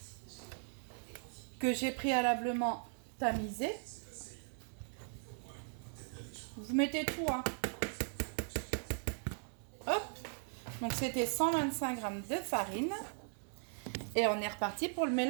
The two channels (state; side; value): silent; left; 52 dB below the other